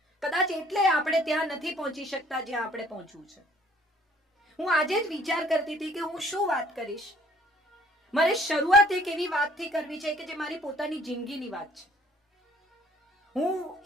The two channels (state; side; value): normal; both; correlation 0.58